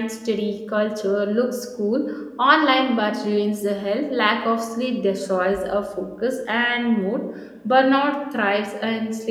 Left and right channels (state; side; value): identical; both; correlation 1.00